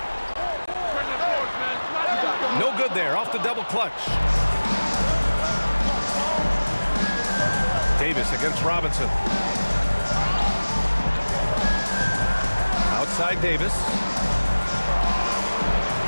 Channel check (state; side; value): inverted; both; correlation -1.00